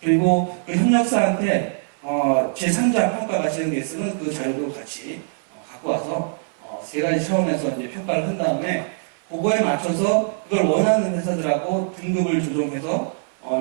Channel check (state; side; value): silent; left; 64 dB below the other